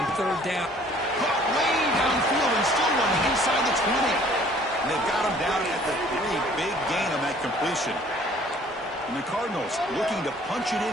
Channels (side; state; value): both; normal; correlation 0.55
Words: third down. Caught way downfield and still one inside the 20. And they've got him down at the 3. Big gain on that completion. And the Cardinals looking to punch it